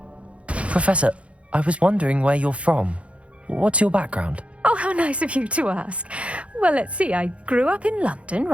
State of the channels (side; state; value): left; late; 0.062 ms